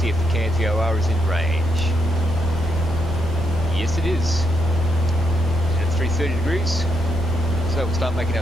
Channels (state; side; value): normal; both; correlation 0.78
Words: if the Cairns VOR is in range. Yes, it is. At 330 degrees. So we'll start making